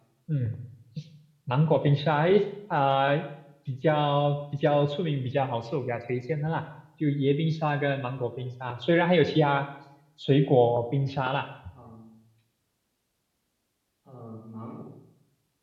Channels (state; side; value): identical; both; correlation 1.00